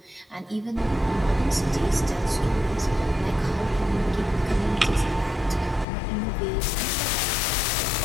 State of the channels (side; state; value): right; drops out; at 5.9 s